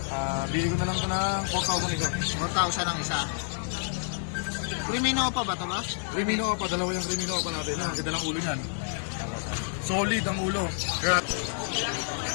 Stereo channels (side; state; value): right; silent; digital silence